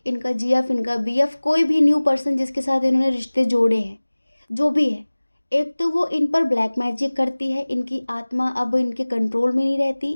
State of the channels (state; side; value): inverted; both; correlation -1.00